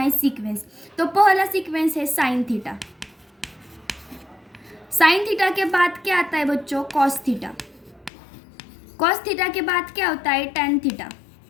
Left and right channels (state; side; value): drops out; right; at 8.1 s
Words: सीक्वेंस। तो पहला सीक्वेंस है साइन थीटा। साइन थीटा के बाद क्या आता है बच्चों? Cos theta. कॉस थीटा के बाद क्या होता है? Tan theta.